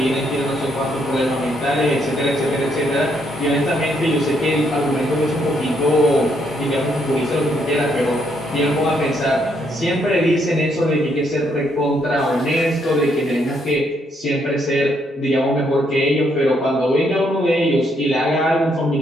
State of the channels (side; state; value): both; normal; correlation 0.73